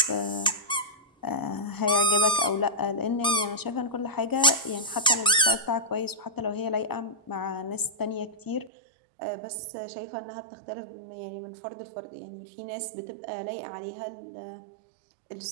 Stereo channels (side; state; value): left; drops out; at 8.7 s